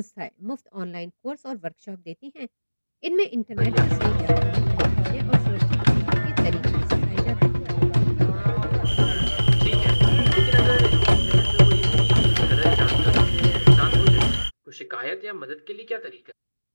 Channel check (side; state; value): both; inverted; correlation -1.00